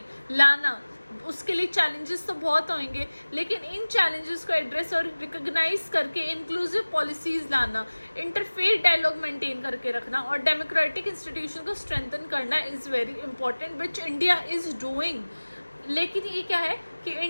लाना, उसके लिए चैलेंजेस तो बहुत होंगे, लेकिन इन चैलेंजेस को एड्रेस और रिकॉग्नाइज करके इंक्लूसिव पॉलिसीज लाना, इंटरफेथ डायलॉग मेंटेन करके रखना और डेमोक्रेटिक इंस्टीट्यूशन को स्ट्रेंथन करना is very important, which India is doing. लेकिन ये क्या है कि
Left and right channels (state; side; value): inverted; both; correlation -1.00